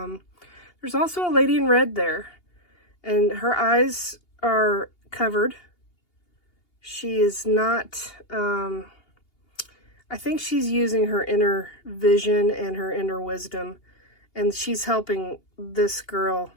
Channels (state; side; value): late; right; 2.8 ms